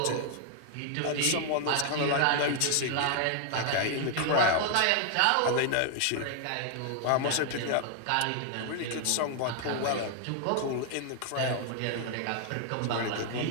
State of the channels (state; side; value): different; both; correlation 0.00